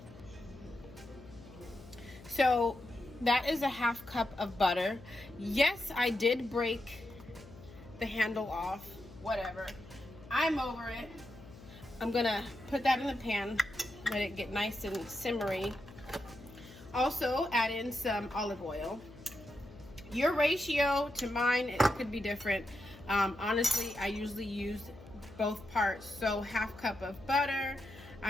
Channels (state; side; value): noise; left; hum, 19 dB below the sound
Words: So that is 1/2 cup of butter. Yes, I did break the handle off, whatever. I'm over it. I'm gonna put that in the pan, let it get nice and simmery. Also add in some olive oil. Your ratio to mine, it could be different. Honestly, I usually use both parts. So 1/2 cup of butter.